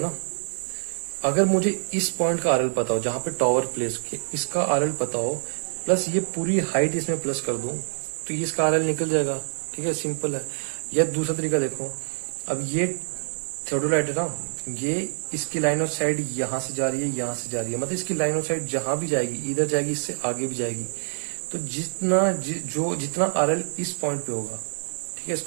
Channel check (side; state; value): left; silent; digital silence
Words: अगर मुझे इस पॉइंट का आरएल पता हो जहां पे टावर प्लेस किया, इसका आरएल पता हो, प्लस ये पूरी हाइट इसमें प्लस कर दूं, तो ये इसका आरएल निकल जाएगा, ठीक है, सिंपल है। या दूसरा तरीका देखो, अब ये थियोडोलाइट है ना, ये इसकी लाइन ऑफ साइड यहां से जा रही है, यहां से जा रही है, मतलब इसकी लाइन ऑफ साइड जहां भी जाएगी, इधर जाएगी, इससे आगे भी जाएगी, तो जितना आरएल इस पॉइंट पे होगा, ठीक है,